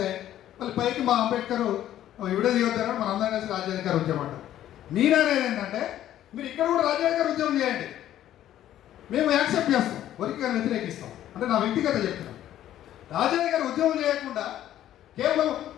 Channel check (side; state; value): right; quieter; 12.2 dB